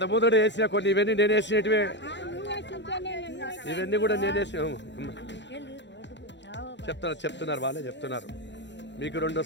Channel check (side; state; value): right; late; 0.52 ms